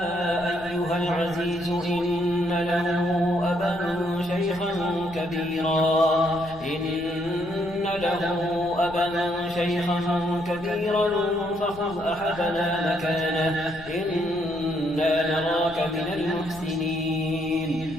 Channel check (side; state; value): left; noise; rumble, 18 dB below the sound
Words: أيها العزيز إن له أبا شيخا كبيرا فخذ أحدنا مكانه إنا نراك من المحسنين.